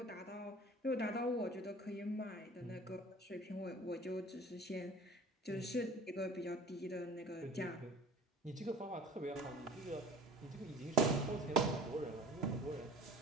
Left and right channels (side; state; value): both; normal; correlation 0.44